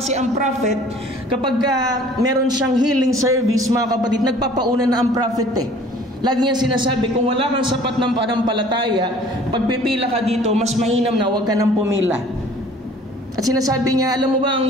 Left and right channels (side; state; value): both; normal; correlation 0.51